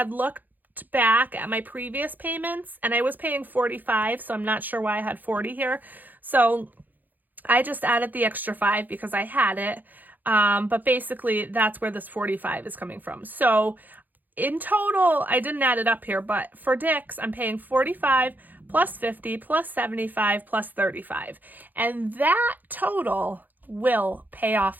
looked looked back at my previous payments, and I was paying $45, so I'm not sure why I had $40 here. So I just added the extra $5 because I had it. But basically that's where this $45 is coming from. So in total, I didn't add it up here, but for Dick's, I'm paying $45 plus $50 plus $75 plus $35. And that total will pay off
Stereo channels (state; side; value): late; left; 0.085 ms